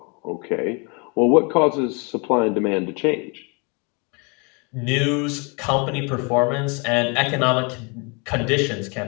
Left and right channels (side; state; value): right; quieter; 32.3 dB